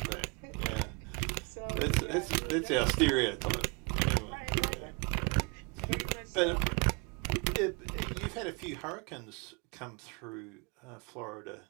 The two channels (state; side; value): quieter; left; 32.5 dB